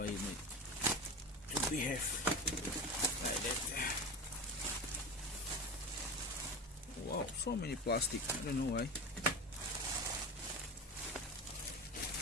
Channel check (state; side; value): normal; both; correlation 0.26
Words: you need to behave like that? Wow, so many plastic. I don't know why.